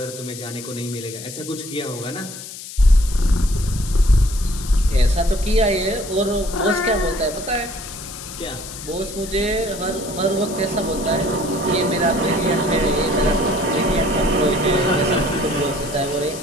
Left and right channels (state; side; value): noise; left; hiss, 12 dB below the sound